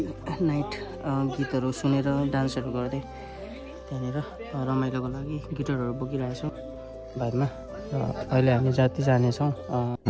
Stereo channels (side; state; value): both; identical; correlation 1.00